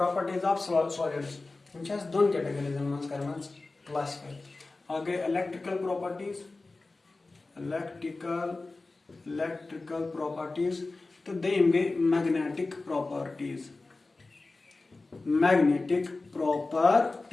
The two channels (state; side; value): quieter; right; 3.4 dB